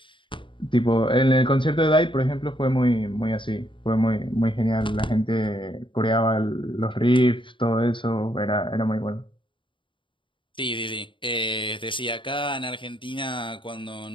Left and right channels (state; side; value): late; right; 0.24 ms